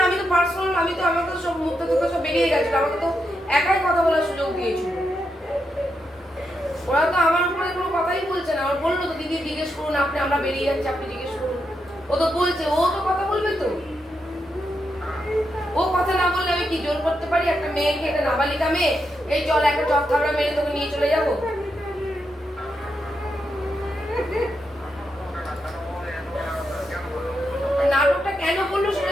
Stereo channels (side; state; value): both; normal; correlation 0.83